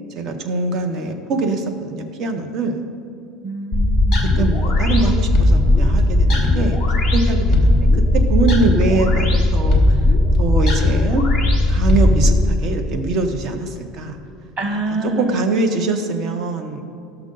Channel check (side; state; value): both; normal; correlation 0.68